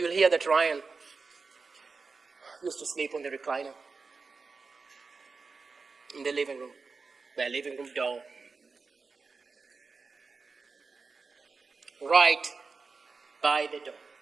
hear that Ryan used to sleep on the recliner in the living room, their living room door, right by the door.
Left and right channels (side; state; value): left; quieter; 4.5 dB